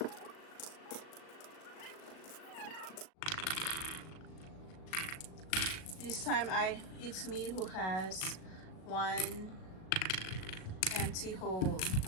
This time it's me who has one empty hole.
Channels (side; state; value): right; late; 37 ms